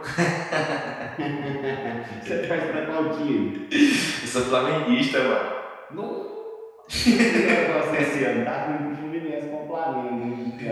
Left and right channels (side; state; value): both; identical; correlation 1.00